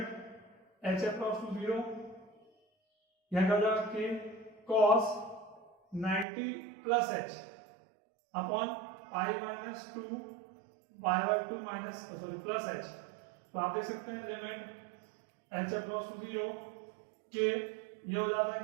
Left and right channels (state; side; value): drops out; left; at 6.2 s